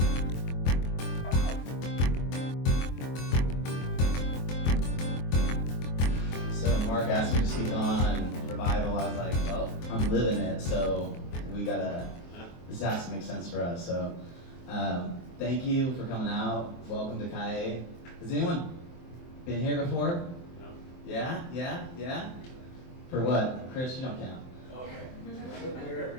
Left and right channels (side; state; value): right; late; 23 ms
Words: asked me to speak on revival. I was like, well, I'm living it, so this has to make sense for us. So thank you for coming out. Welcome to Calle. Has anyone been here before? No. Yeah? For what? Chris, you don't count. Okay.